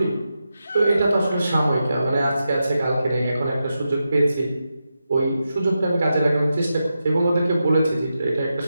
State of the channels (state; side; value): inverted; both; correlation -0.89